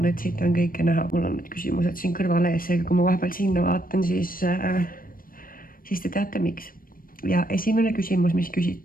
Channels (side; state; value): right; late; 0.41 ms